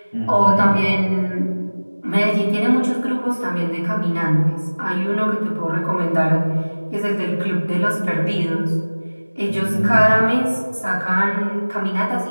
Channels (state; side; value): inverted; both; correlation -1.00